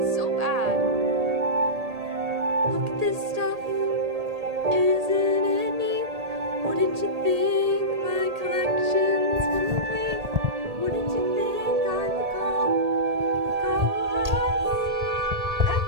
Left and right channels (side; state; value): left; late; 1.8 ms